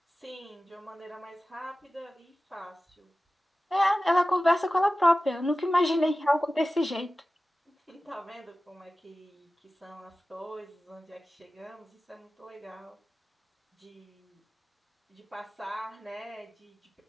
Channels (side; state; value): both; normal; correlation 0.96